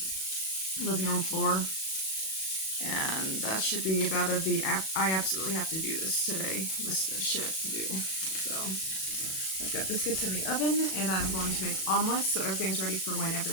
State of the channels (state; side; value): late; right; 37 ms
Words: living room floor. And that should be about I absolutely have to do this today. List of shit to do. So, I've got biscuits in the oven, and I'm going to make omelets so everything's ready for when